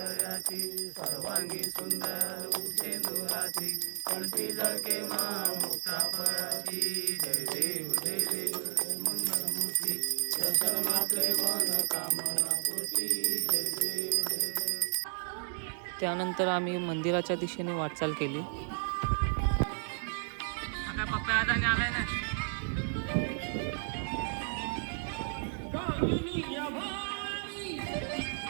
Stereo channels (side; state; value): left; silent; 56 dB below the other